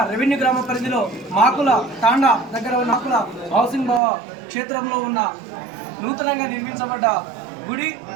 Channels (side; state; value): left; drops out; at 4.0 s